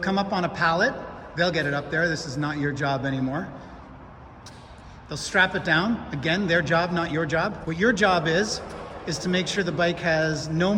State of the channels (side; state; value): both; identical; correlation 1.00